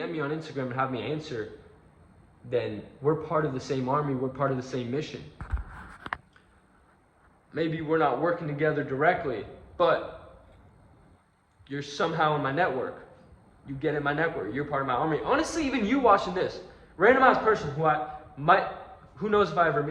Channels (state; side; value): identical; both; correlation 1.00